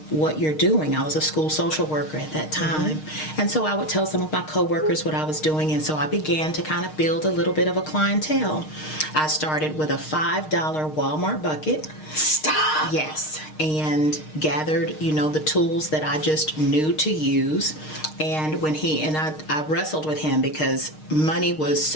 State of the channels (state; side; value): late; right; 6.5 ms